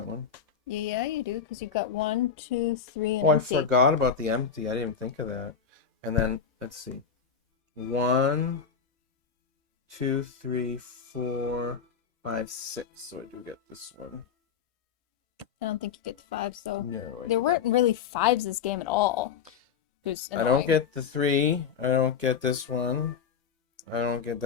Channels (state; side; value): quieter; right; 6.7 dB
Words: one. Yeah, you do, because you've got 1, 2, 3, and oh, I empty. forgot about the empty. I didn't even think of that. And then, let's see. 1, 2, 3, 4, 5, 6. So I do get this one. I don't think you get the 5s, though. No, There weren't really 5s this game at all. I don't get the 3. I don't get this one. I don't get